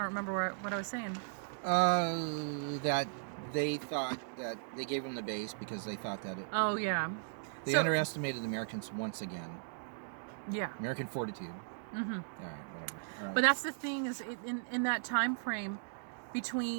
remember what I was saying. That they thought that they gave them the base because they thought that it... Oh, yeah. They underestimated the Americans once again. Yeah. American fortitude. Mm-hmm. All right, whatever. All right. But that's the thing, is in that time frame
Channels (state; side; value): silent; left; digital silence